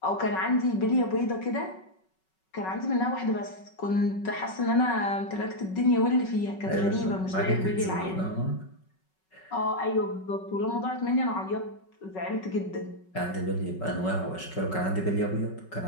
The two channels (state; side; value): late; right; 5.3 ms